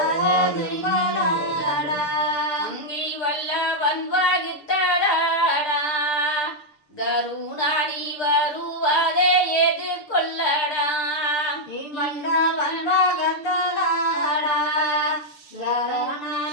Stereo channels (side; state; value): right; late; 6.6 ms